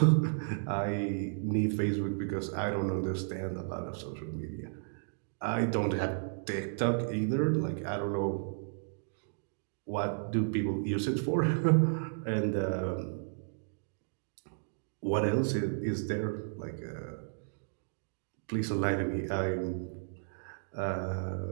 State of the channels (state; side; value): silent; left; digital silence